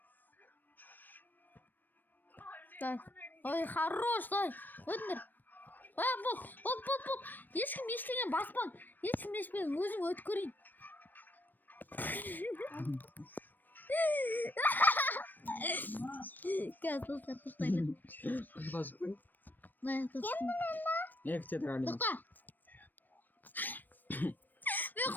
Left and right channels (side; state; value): right; late; 0.090 ms